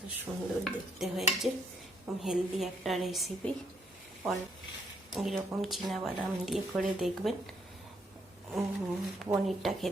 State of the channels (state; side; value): normal; both; correlation 0.72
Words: সুন্দর দেখতে হয়েছে, হেলদি একটা রেসিপি। এরকম চীনাবাদাম দিয়ে করে দেখবেন, পনিরটা